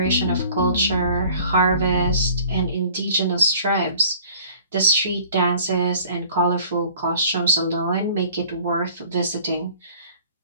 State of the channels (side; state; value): both; inverted; correlation -0.50